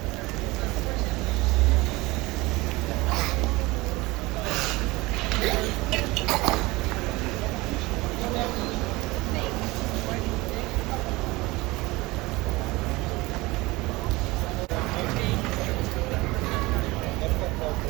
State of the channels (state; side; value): quieter; left; 21.6 dB